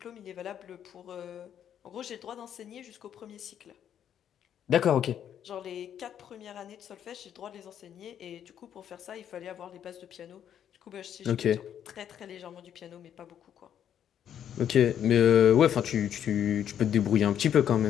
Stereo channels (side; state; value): right; quieter; 9.5 dB